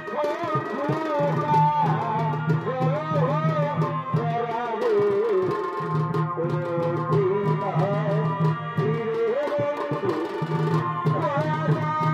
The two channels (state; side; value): identical; both; correlation 1.00